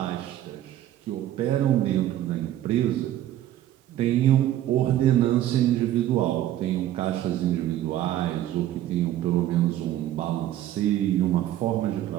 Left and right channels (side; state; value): left; quieter; 12.8 dB